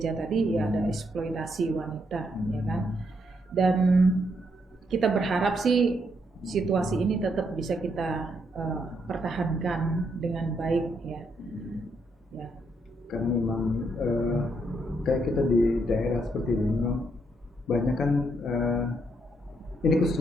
tadi ya, ada eksploitasi wanita ya kan. Dan kita berharap sih situasi ini tetap bisa kita pertahankan dengan baik ya. Karena memang kayak kita di daerah seperti ini memang banyak kan ini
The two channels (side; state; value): both; normal; correlation 0.76